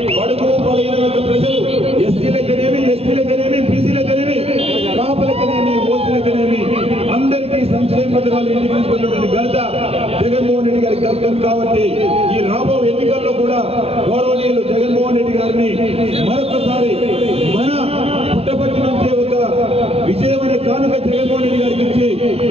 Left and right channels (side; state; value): left; late; 0.29 ms